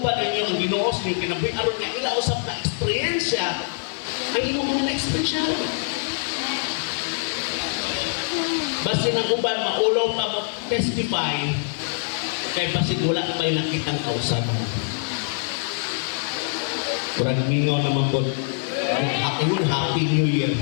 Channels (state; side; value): silent; right; 63 dB below the other